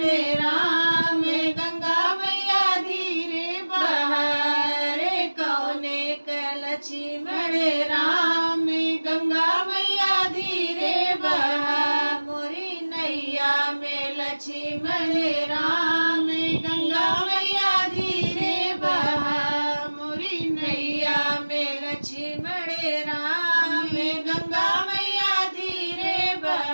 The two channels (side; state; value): both; inverted; correlation -1.00